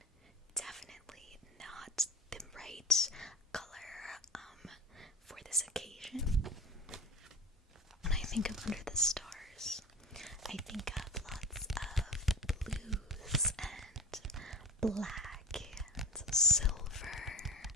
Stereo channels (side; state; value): both; normal; correlation 0.36